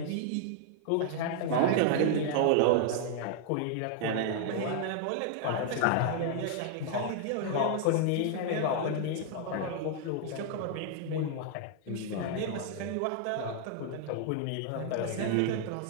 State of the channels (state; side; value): different; both; correlation 0.00